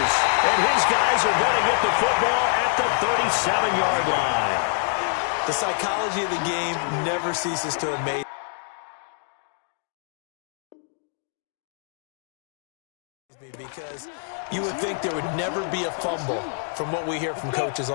And his guys are going to get the football at the 37-yard line. The psychology of the game never ceases to amaze. Because you would think there would never be a fumble from what we hear from coaches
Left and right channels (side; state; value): right; silent; 60 dB below the other